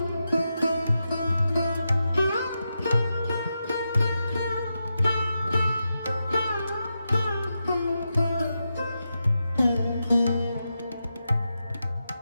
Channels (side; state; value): both; inverted; correlation -0.88